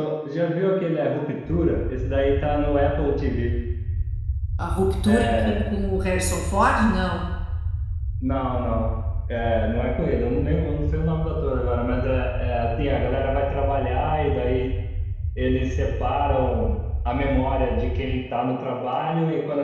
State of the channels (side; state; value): both; identical; correlation 1.00